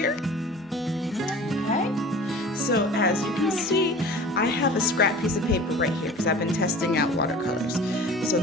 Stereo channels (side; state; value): both; normal; correlation 0.42